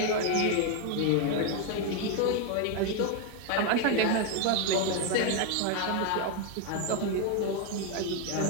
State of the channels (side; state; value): both; different; correlation 0.01